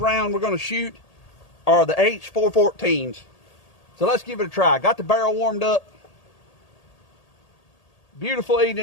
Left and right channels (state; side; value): late; right; 1.8 ms